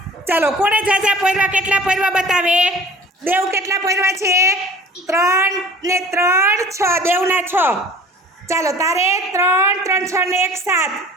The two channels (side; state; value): both; normal; correlation 0.46